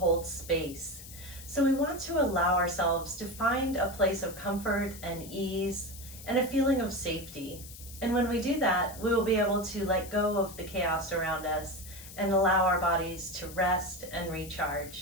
Space. So we want to allow ourselves to find a place of comfort and ease and a feeling of safety. And when we do that, we will be able to let go of the chaos around us and allow our bodies to rest and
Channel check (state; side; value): noise; left; hiss, 15 dB below the sound